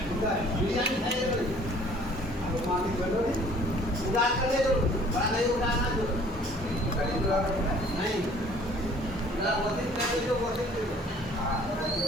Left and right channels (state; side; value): normal; both; correlation 0.54